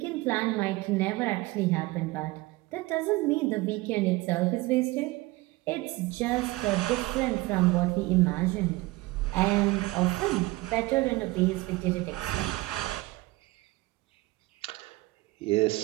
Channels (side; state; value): left; quieter; 20.8 dB